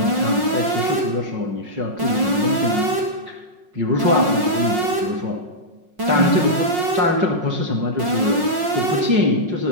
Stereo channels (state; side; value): late; left; 5.5 ms